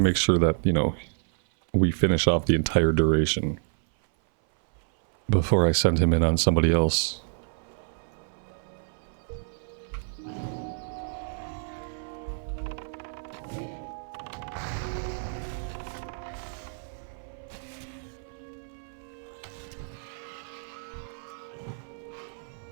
sure that, you know, we finish off the entire duration before I send him in on somebody else.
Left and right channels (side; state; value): left; silent; 58 dB below the other